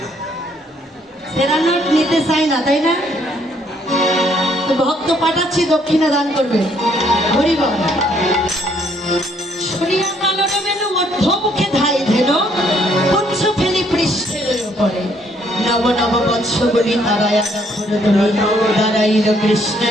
সেরা নোট নিতে চাই না, তাই না? তো ভক্ত পাঠাচ্ছি, দক্ষিণা দান করবে। হরি বল। শুনিয়া কালন মেনু মধ্যমুখে ধাই ধেন, পুচ্ছ ফেলি পৃষ্ঠের উপরে। নব নব বৎসগুলি তারায়া দাঁড়াইল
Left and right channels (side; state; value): both; normal; correlation 0.67